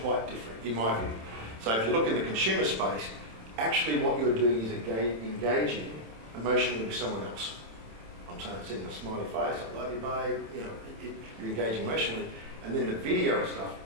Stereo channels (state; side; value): late; left; 27 ms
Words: quite different, in my view. So if you look in the consumer space, actually what you're doing is engaging emotionally with someone else. I'm saying sending a smiley face, I love you, babe. You're engaging emotionally. And then the video stuff